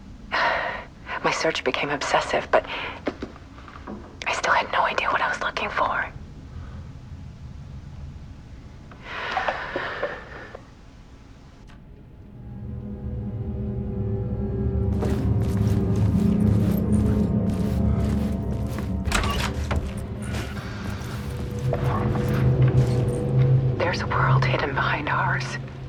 My search became obsessive, but I still had no idea what I was looking for. There's a world hidden behind ours.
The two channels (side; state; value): both; identical; correlation 1.00